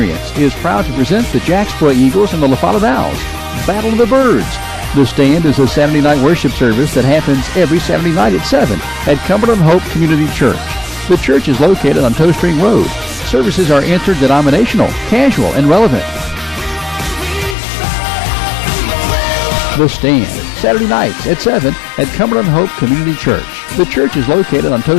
is proud to present the Jacksboro Eagles and the La Follette Owls. Battle of the Birds. The Stand is a Saturday night worship service that happens every Saturday night at 7 at Cumberland Hope Community Church. The church is located on Toe String Road. Services are interdenominational, casual, and relevant. The Stand, Saturday nights at 7 at Cumberland Hope Community Church. The church is located on Toe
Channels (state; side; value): drops out; right; at 17.6 s